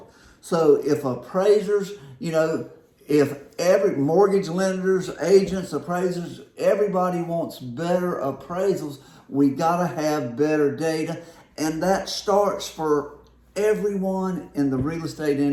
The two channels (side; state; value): both; identical; correlation 1.00